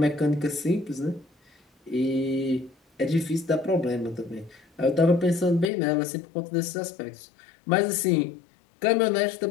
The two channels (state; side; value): drops out; right; at 5.7 s